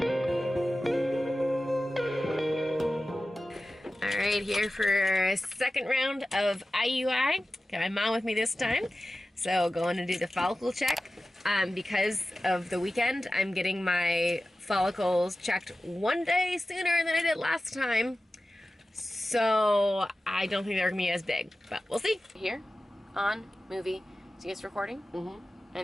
All right, here for a second round of IUI. Got my mom with me this time. So going to do the follicle check. Because of the weekend, I'm getting my follicles checked 1 day sooner than I did last time. So I don't think they're gonna be as big, but we'll see. Here, on, movie, see it's recording? Mm-hmm.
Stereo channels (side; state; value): both; normal; correlation 0.95